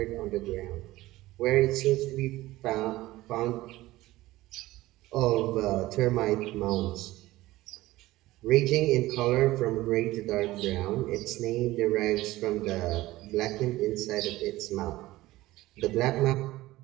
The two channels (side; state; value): left; quieter; 17.5 dB